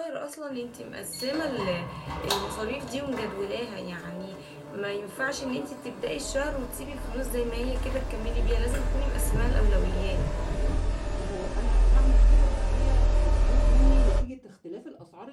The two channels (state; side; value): identical; both; correlation 1.00